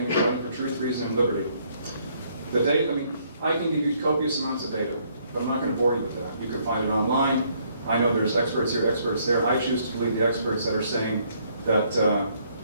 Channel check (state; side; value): inverted; both; correlation -0.68